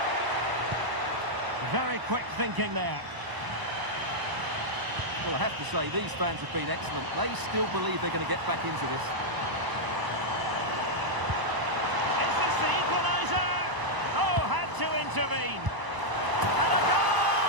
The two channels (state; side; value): late; left; 1.0 ms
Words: Very quick thinking there. Well, I have to say, these fans have been excellent. They still believe they're going to get back into this. Is this the equaliser? Oh, had to intervene. And a